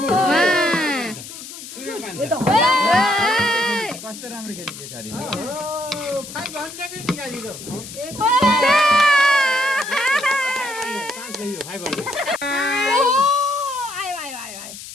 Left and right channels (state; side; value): noise; left; hiss, 13 dB below the sound